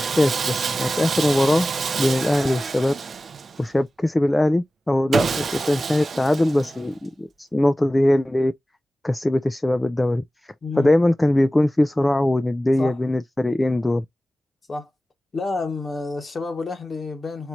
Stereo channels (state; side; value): normal; both; correlation 0.96